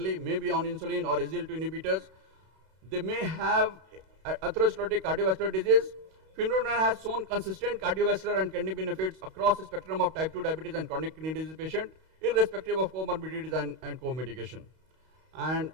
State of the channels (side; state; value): left; late; 32 ms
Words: may be on insulin or SGLT2 inhibitors. They may have atherosclerotic cardiovascular disease. Finneron has shown consistent cardiovascular and kidney benefits across the spectrum of type 2 diabetes and chronic kidney disease patient, irrespective of comorbidities and co-medication. And